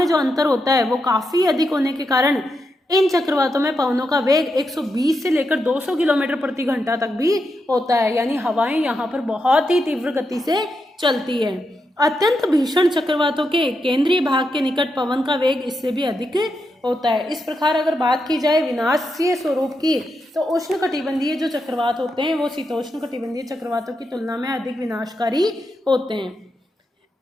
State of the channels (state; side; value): normal; both; correlation 0.85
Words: जो अंतर होता है वो काफी अधिक होने के कारण इन चक्रवातों में पवनों का वेग 120 से लेकर 200 किलोमीटर प्रति घंटा तक भी होता है, यानी हवाएं यहाँ पर बहुत ही तीव्र गति से चलती है। अत्यंत भीषण चक्रवातों के केंद्रीय भाग के निकट पवन का वेग इससे भी अधिक होता है। इस प्रकार अगर बात की जाए विनाशीय स्वरूप की तो उष्णकटिबंधीय जो चक्रवात होते हैं वो शीतोष्णकटिबंधीय चक्रवातों की तुलना में अधिक विनाशकारी होते हैं।